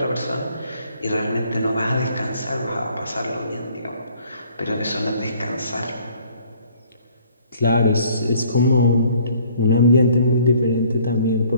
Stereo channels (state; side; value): inverted; both; correlation -0.59